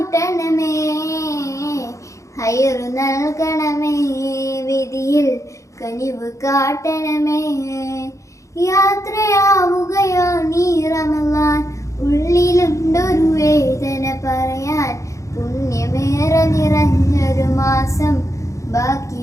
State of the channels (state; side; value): late; right; 0.15 ms